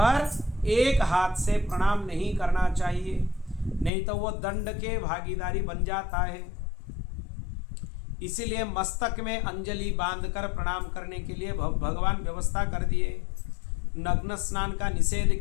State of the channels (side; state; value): right; drops out; at 3.9 s